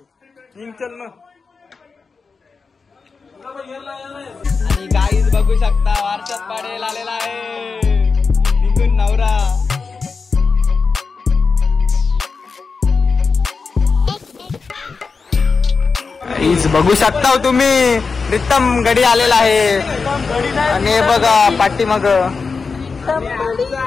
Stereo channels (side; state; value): right; quieter; 4.8 dB